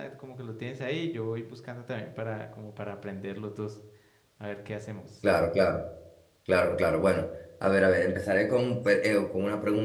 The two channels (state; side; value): identical; both; correlation 1.00